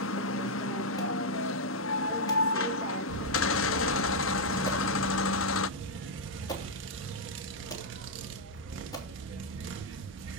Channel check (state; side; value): normal; both; correlation -0.04